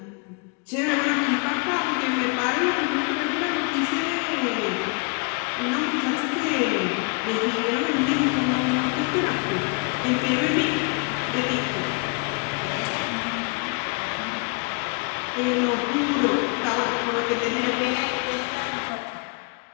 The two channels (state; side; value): quieter; right; 33.8 dB